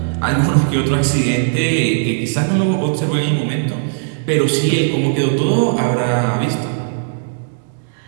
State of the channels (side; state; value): left; silent; 68 dB below the other